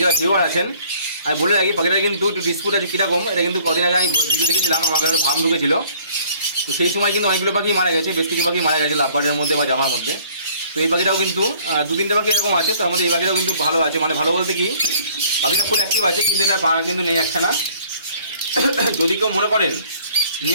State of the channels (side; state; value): both; inverted; correlation -0.57